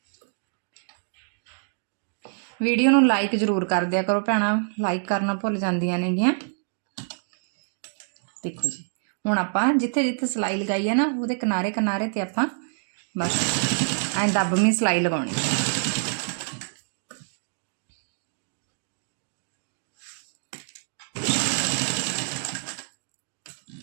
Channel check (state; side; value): silent; left; digital silence